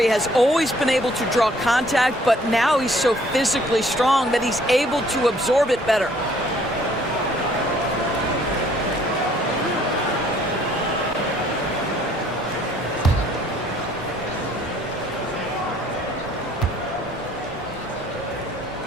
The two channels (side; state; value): both; normal; correlation 0.60